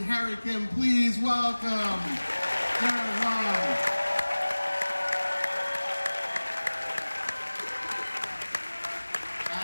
Kim. Please welcome Garrett Wang.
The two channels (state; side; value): inverted; both; correlation -1.00